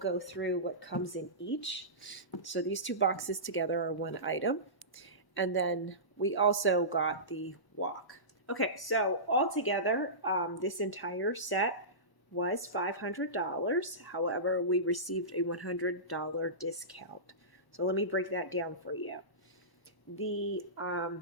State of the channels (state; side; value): late; right; 1.0 ms